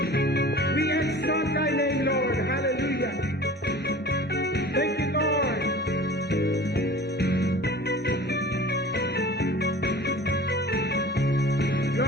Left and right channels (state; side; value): normal; both; correlation 0.41